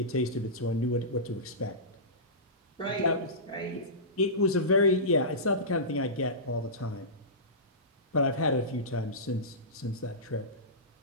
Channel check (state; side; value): normal; both; correlation -0.19